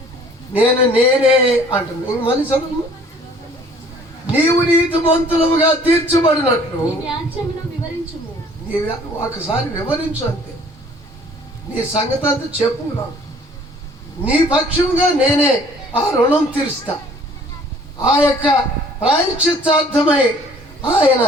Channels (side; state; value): both; normal; correlation 0.55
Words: నేనే అంటున్నా. ఇంక మళ్ళీ చదువు. నీవు నీతిమంతులుగా తీర్చబడినట్లు ఒకసారి వివరించు, అంతే. నీ సంగతి అంతా చెప్పు నాకు, నీ పక్షంగా నేనే ఆ రుణం తీరుస్తా, ఆ యొక్క ప్రాయశ్చిత్తార్థమై ఆయన